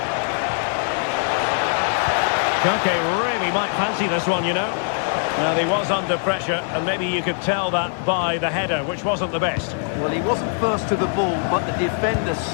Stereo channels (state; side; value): silent; right; 59 dB below the other